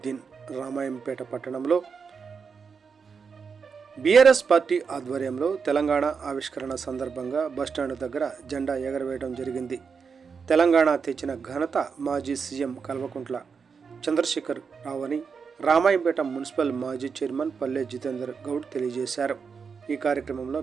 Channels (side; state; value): left; quieter; 5.8 dB